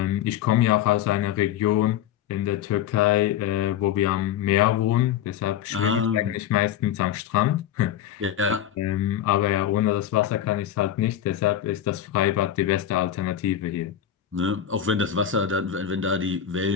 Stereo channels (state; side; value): quieter; right; 10.3 dB